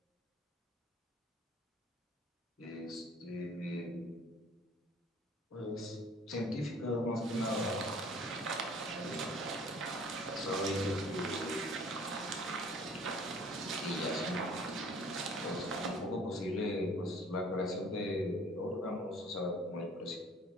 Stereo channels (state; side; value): normal; both; correlation 0.52